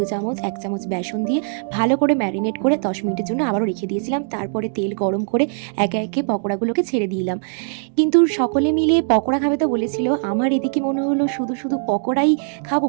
চামচ, 1 চামচ বেসন দিয়ে ভালো করে ম্যারিনেট করে 10 মিনিটের জন্য আবারও রেখে দিয়েছিলাম। তারপরে তেল গরম করে একে একে পকোড়াগুলোকে ছেড়ে দিলাম। কিন্তু সকলে মিলে পকোড়া খাবে তো বলেছিল, আমার এদিকে মনে হলো শুধু শুধু পকোড়াই খাবো।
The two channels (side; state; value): left; silent; digital silence